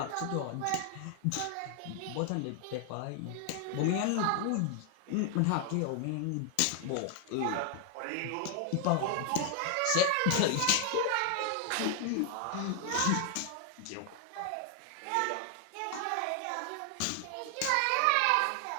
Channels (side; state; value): both; different; correlation 0.00